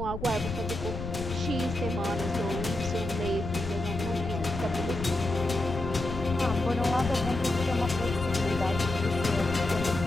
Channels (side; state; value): left; noise; rumble, 7 dB below the sound